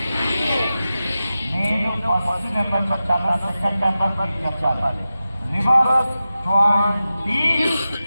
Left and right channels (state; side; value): inverted; both; correlation -0.93